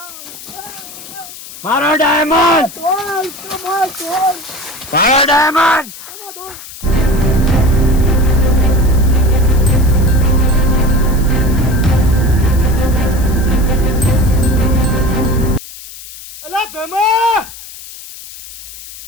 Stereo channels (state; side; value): noise; left; hiss, 15 dB below the sound